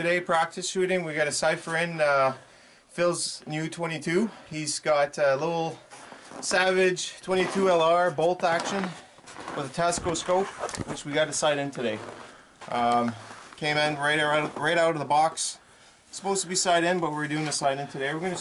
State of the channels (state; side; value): identical; both; correlation 1.00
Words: practice shooting. We got a cipher in Phil's new 22. He's got a little Savage 22 LR bolt action with a Tasco Scope, which we got a sight in today. Came in right out of the box. Supposed to be sight in, but we're doing the sight in today. We're going to